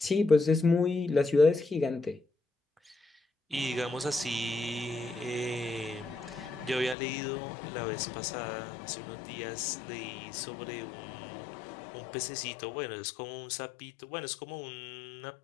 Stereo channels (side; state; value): right; drops out; at 7.0 s